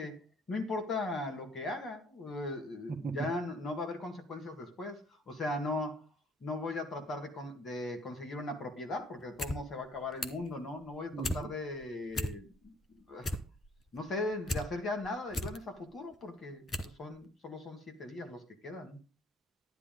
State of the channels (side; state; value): both; normal; correlation 0.59